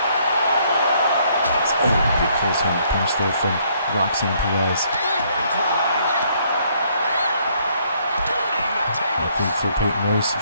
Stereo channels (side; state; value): both; inverted; correlation -0.67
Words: Oh, big close hand punch there from Roxanne Perez. I think for Peyton Royce,